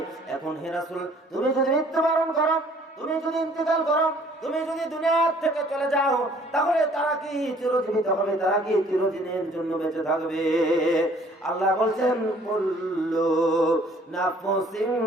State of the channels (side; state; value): both; normal; correlation 0.57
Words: এখন হে রাসূল, তুমি যদি মৃত্যুবরণ করো, তুমি যদি ইন্তেকাল করো, তুমি যদি দুনিয়া থেকে চলে যাও, তাহলে তারা কি চিরজীবিত হবে? তারা কি চিরদিনের জন্য বেঁচে থাকবে? আল্লাহ বলছেন, কুল্লু নাফসিন